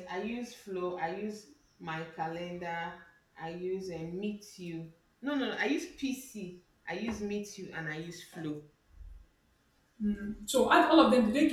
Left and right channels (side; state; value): both; identical; correlation 1.00